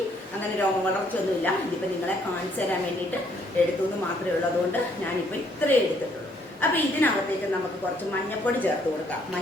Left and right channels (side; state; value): both; normal; correlation 0.67